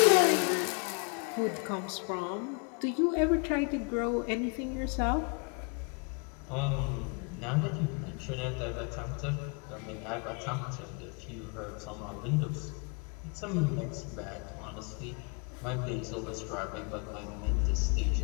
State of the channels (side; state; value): right; quieter; 35.8 dB